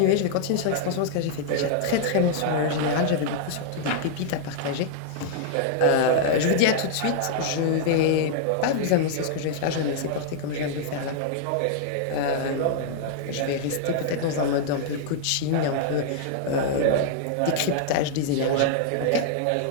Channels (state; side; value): different; both; correlation -0.01